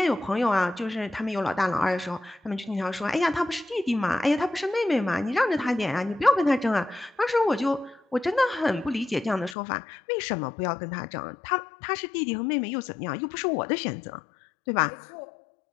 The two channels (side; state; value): right; drops out; at 9.6 s